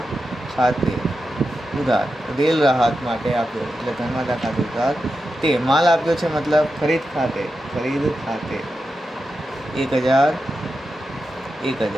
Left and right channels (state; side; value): normal; both; correlation 0.89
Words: ખાતે ઉધાર, રેલ રાહત માટે આપ્યો એટલે ધર્માદા ખાતે ઉધાર. તે માલ આપ્યો છે મતલબ ખરીદ ખાતે, 1000.